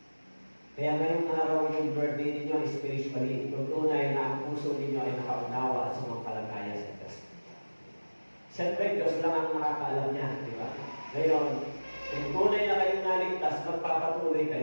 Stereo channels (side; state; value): both; inverted; correlation -1.00